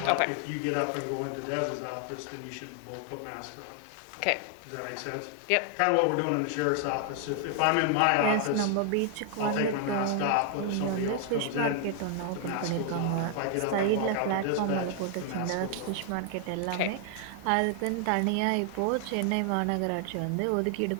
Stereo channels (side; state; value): both; different; correlation 0.00